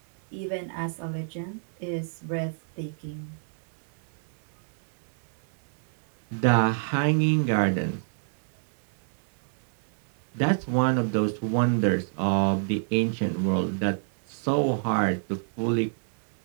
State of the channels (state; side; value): silent; left; digital silence